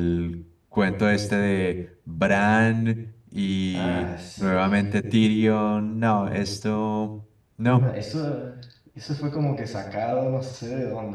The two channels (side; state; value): both; identical; correlation 1.00